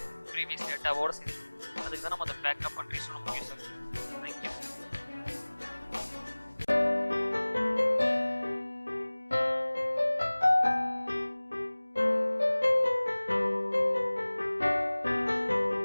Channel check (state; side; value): inverted; both; correlation -1.00